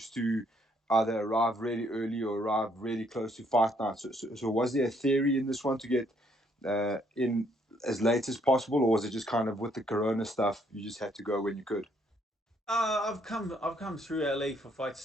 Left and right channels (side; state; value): both; normal; correlation 0.69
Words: to either arrive really early or arrive really close to fight night. So was there a theory in this one to get in as late as possible, or was it just kind of with the corona stuff, you just had to go when you could? I've come through LA for